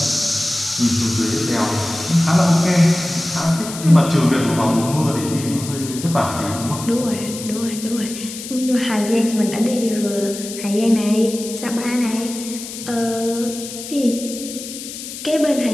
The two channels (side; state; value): left; noise; hiss, 10 dB below the sound